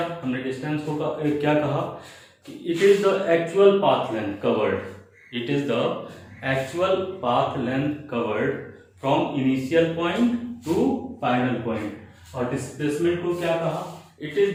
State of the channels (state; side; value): identical; both; correlation 1.00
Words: हमने डिस्टेंस को क्या कहा कि it is the actual path length covered, it is the actual path length covered from initial point two final point. और डिस्प्लेसमेंट को क्या कहा? It is